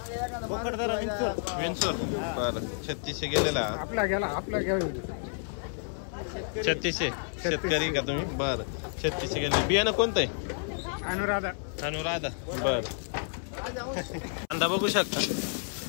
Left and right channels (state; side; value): silent; right; 57 dB below the other